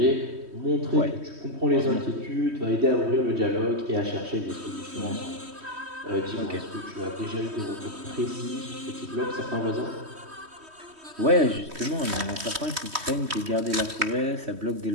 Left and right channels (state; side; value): late; left; 3.1 ms